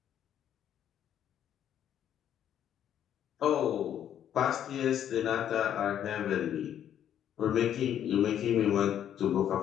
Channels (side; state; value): right; quieter; 10.1 dB